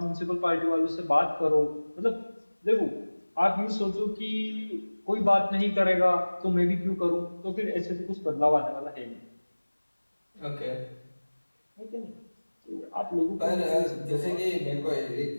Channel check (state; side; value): inverted; both; correlation -1.00